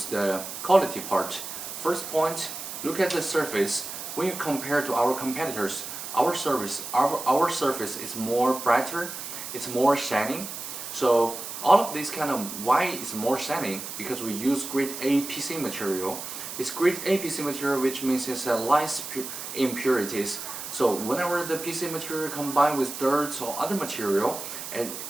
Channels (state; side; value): noise; right; hiss, 8 dB below the sound